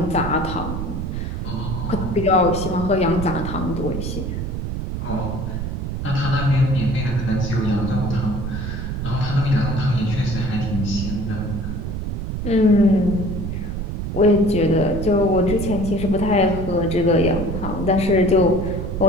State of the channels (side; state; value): right; noise; rumble, 4 dB below the sound